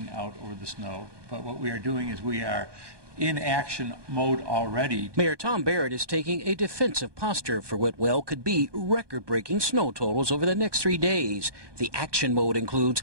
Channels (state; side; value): late; left; 1.2 ms